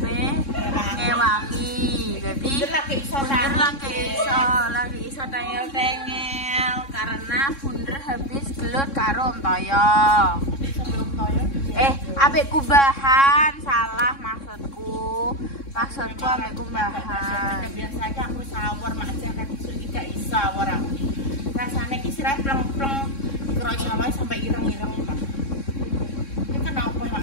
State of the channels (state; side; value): late; right; 3.6 ms